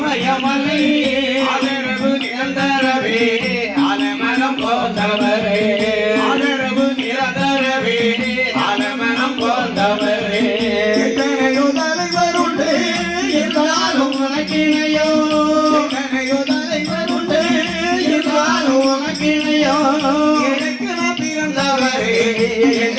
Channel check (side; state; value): both; identical; correlation 1.00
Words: ஆதரவு நிரந்தரவே ஆலமனம் போந்தவரே ஆதரவு நிரந்தரவே ஆலமனம் போந்தவரே எத்தனையோ தலைவருண்டு என்றாலும் உனக்கிணையோ எத்தனையோ தலைவருண்டு என்றாலும் உனக்கிணையோ